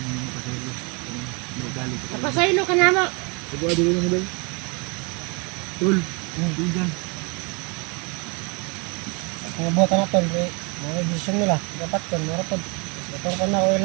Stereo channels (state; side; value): quieter; left; 31.6 dB